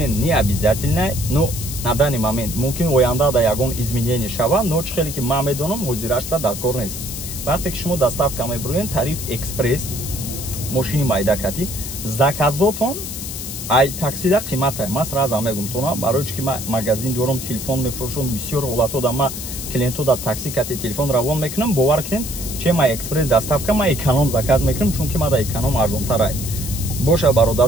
не обязательный, но на данный момент мумкин оянда да ягон изменение шава, но чӣ хеле ки ман медонам ҳозирашта дар кор нест. Вақте ки шумо доставка мебуред, тариф экспресс мошини майдакати заказотон ай таксида қимат ай. Ман сразу мегум тона барои чи ки ма магазин дорам, телефон мефурӯшам, бисёр ҳолато да ма клиенту да такси кати телефон равон мекунам. Бовар кунед, че ма экспресс доставка ма эконом заказ мекунам, чунки ма да эконом арзонтар ай. Боша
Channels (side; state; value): left; noise; hiss, 8 dB below the sound